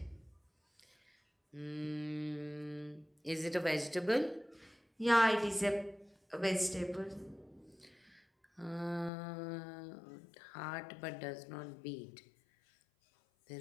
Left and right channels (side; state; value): right; drops out; at 9.1 s